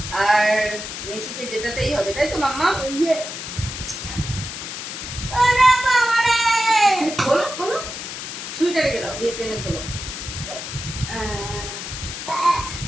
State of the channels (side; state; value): left; noise; hiss, 7 dB below the sound